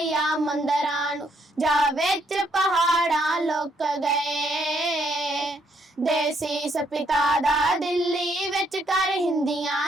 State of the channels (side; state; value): both; normal; correlation 0.72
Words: ਮੰਦਰਾਂ ਨੂੰ, ਜਾ ਵਿੱਚ ਪਹਾੜਾਂ ਲੁਕ ਗਏ। ਦੇਸੀ ਸਪਿਤਾ ਦਾ ਦਿੱਲੀ ਵਿੱਚ ਕਰ